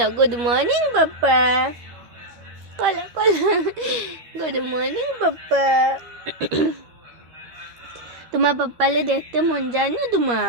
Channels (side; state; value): left; late; 12 ms